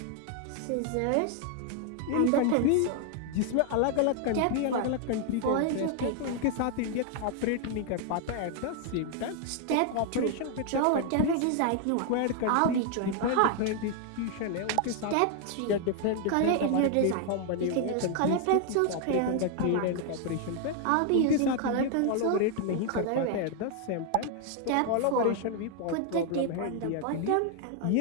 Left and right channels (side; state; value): both; different; correlation 0.00